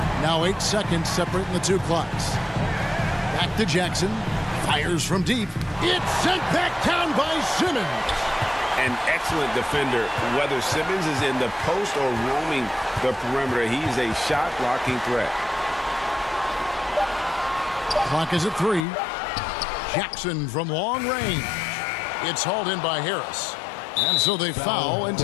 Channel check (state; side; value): drops out; right; at 18.9 s